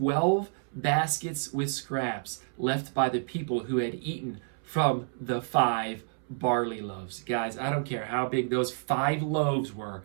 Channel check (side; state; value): left; silent; 58 dB below the other